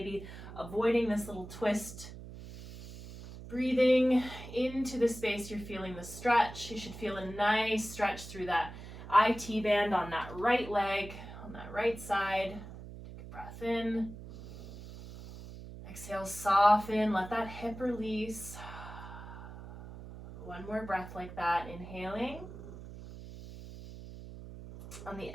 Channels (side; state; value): right; noise; hum, 13 dB below the sound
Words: avoiding this little twist. Breathing into the space, you're feeling the stretch. You should feel a nice stretch through that IT band on that right leg, on that right side. Breath in. Exhale, soften, let that hip release. One more breath like that, inhaling. On the